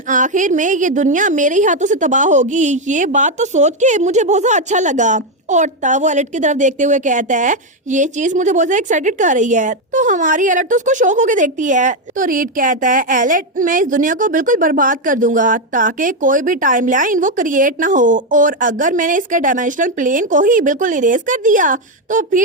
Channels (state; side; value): normal; both; correlation 0.06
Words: आखिर में ये दुनिया मेरे ही हाथों से तबाह होगी। ये बात तो सोच के मुझे बहुत ज्यादा अच्छा लगा। और तब वो एलिट की तरफ देखते हुए कहता है ये चीज मुझे बहुत ज्यादा एक्साइटेड कर रही है। तो हमारी एलिट तो उसको शौक होके देखती है। तो रीड कहता है एलिट, मैं इस दुनिया को बिल्कुल बर्बाद कर दूंगा ताकि कोई भी टाइमलाइन वो क्रिएट ना हो, और अगर मैंने इसके डायमेंशनल प्लेन को ही बिल्कुल इरेज कर दिया तो